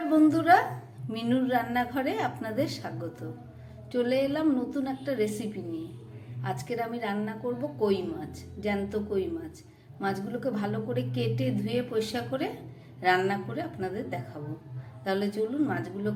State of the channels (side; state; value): both; identical; correlation 1.00